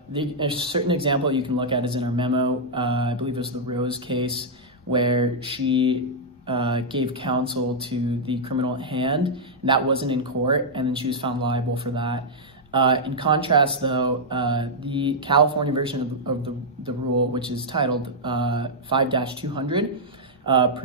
certain example you can look at is in our memo. I believe it was the Rose case where she gave counsel to the criminal at hand, and that wasn't in court, and then she was found liable for that. In contrast, though, the California version of the rule, which is titled 5-200,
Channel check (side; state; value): both; normal; correlation -0.07